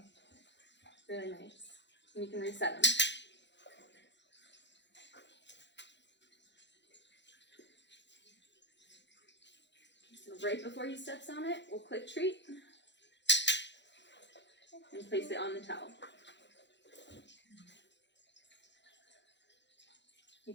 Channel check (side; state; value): right; late; 0.52 ms